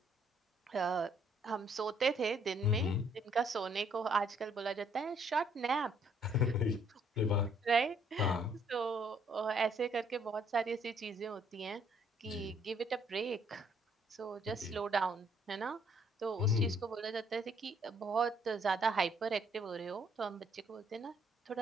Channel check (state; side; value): normal; both; correlation 0.66